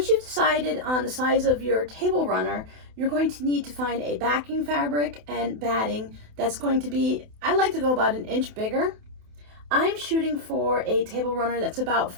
you've decided on the size of your table runner, you're going to need to find a backing fabric and batting that's going to be, I like to go about an inch bigger. I'm shooting for a table runner that's about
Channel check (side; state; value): left; late; 28 ms